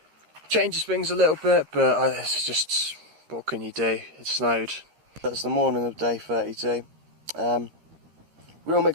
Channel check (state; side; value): late; left; 13 ms